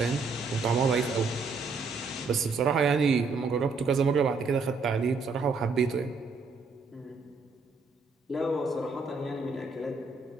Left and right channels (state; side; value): quieter; left; 4.2 dB